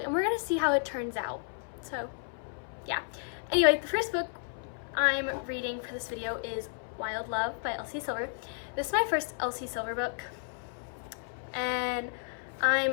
and we're gonna see how it turns out. So yeah. Anyway, the first book I'm reading for this video is Wild Love by Elsie Silver. This is my first Elsie Silver book, and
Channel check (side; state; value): right; silent; 56 dB below the other